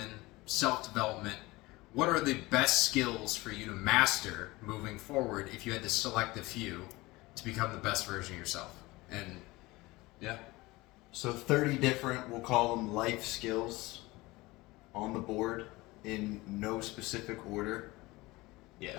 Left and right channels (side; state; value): right; quieter; 21.1 dB